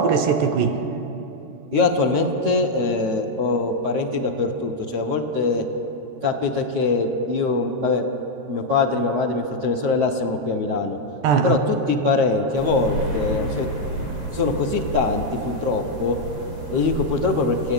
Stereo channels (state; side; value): late; left; 13 ms